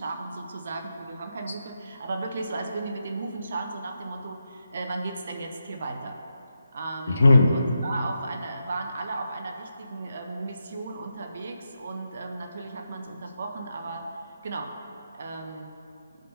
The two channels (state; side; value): inverted; both; correlation -0.85